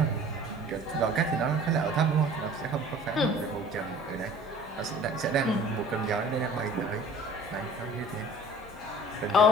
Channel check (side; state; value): both; normal; correlation 0.47